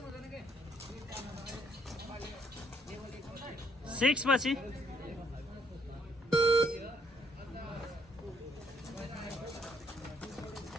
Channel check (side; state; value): both; normal; correlation 0.68